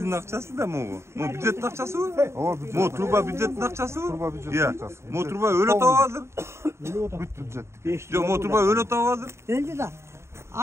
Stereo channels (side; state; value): left; late; 0.13 ms